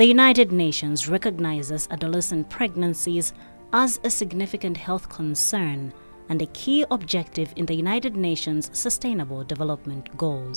United Nations recognizes adolescent pregnancies as a significant health concern and a key objective in the United Nations Sustainable Development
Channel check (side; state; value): both; inverted; correlation -1.00